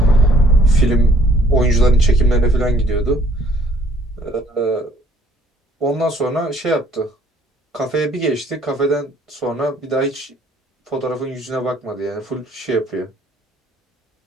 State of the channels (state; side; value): normal; both; correlation 0.60